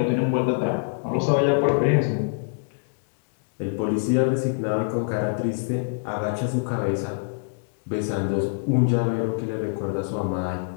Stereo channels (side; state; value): right; silent; digital silence